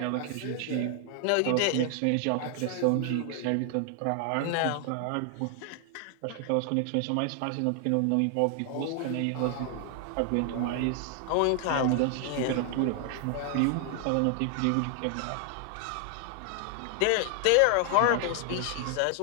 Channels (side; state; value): both; different; correlation 0.00